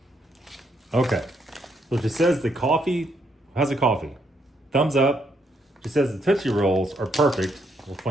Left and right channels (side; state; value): both; normal; correlation 0.74